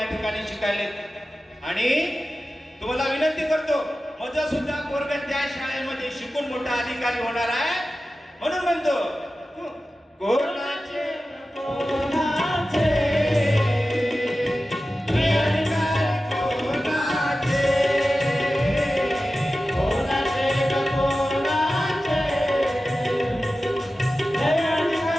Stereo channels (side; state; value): both; normal; correlation 0.94